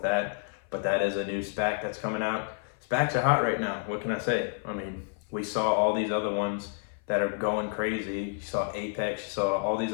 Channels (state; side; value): silent; right; 56 dB below the other